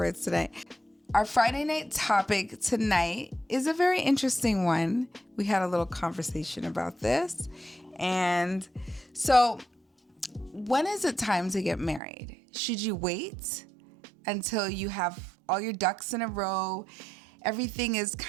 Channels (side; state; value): left; drops out; at 12.0 s